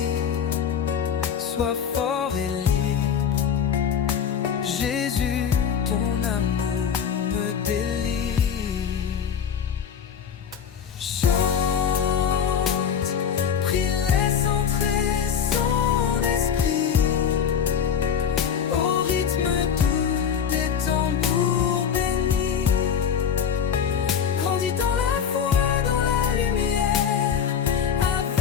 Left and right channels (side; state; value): right; quieter; 7.7 dB